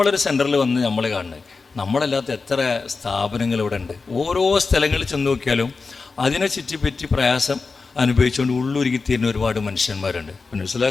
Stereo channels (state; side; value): quieter; right; 4.4 dB